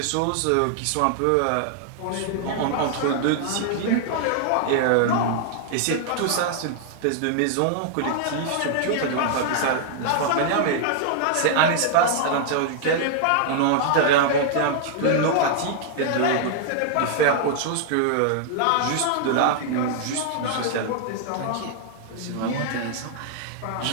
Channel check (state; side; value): different; both; correlation 0.00